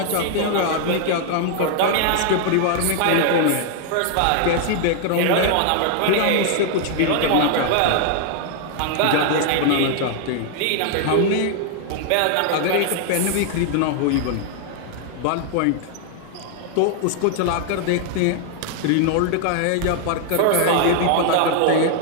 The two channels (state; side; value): different; both; correlation 0.00